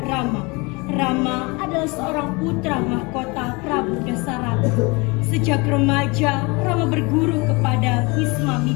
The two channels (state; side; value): quieter; right; 27.0 dB